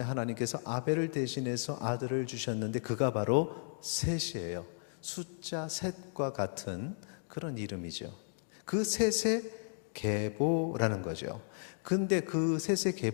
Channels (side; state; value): right; silent; digital silence